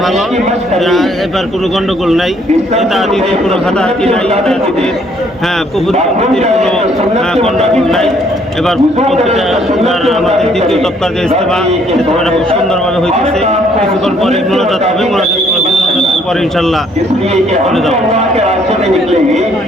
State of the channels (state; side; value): normal; both; correlation 0.65